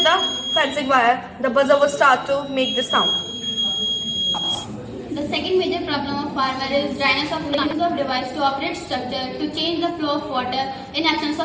the fencing wire, the buzzer would start to make the sound. The second major problem of farmer is dryness of use of device to operate structure to change the flow of water in absence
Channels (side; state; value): both; identical; correlation 1.00